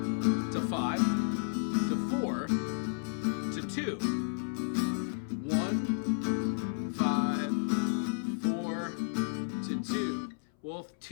to 5 to 4 to 2. 1, 5, 4 to 2. Well, if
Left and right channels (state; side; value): silent; right; 56 dB below the other